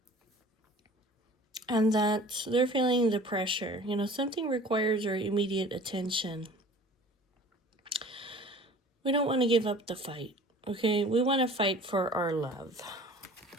And that they're feeling the pressure. You know, something requires our immediate attention. We don't want to give up the fight, okay? We want to fight for our love.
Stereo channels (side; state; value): both; normal; correlation 0.45